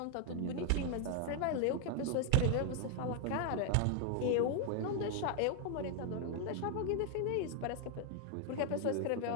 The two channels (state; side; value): different; both; correlation 0.00